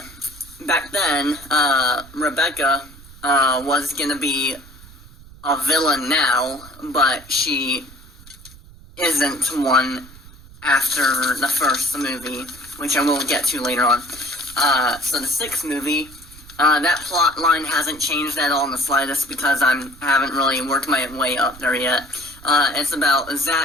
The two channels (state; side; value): noise; right; rumble, 20 dB below the sound